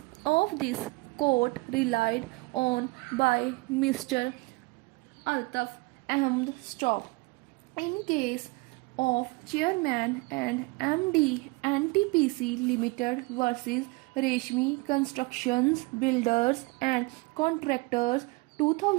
of this court relied on by Mr. Altaf Ahmed Stop. In case of Chairman and MD NTPC Limited versus Reshmi Constructions Builders and Contractors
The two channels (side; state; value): left; quieter; 25.6 dB